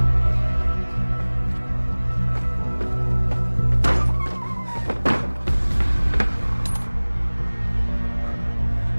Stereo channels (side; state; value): both; inverted; correlation -1.00